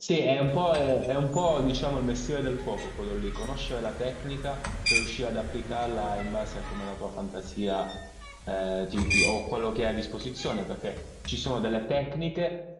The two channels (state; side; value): identical; both; correlation 1.00